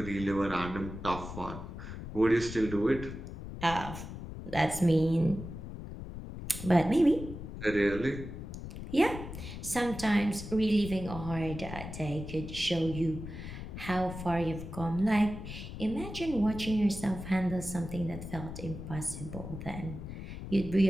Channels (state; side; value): noise; left; rumble, 9 dB below the sound